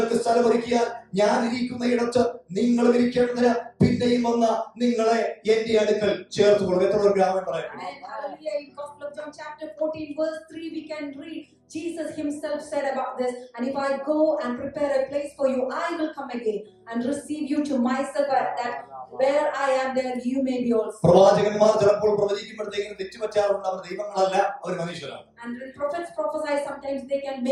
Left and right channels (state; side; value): identical; both; correlation 1.00